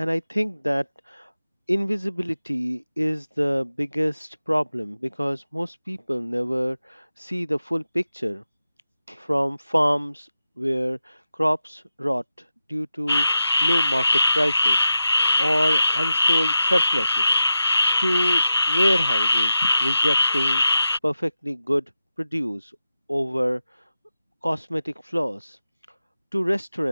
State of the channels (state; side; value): inverted; both; correlation -0.92